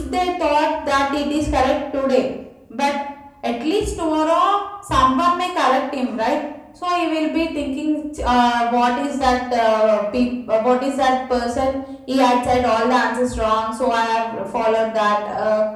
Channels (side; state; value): both; identical; correlation 1.00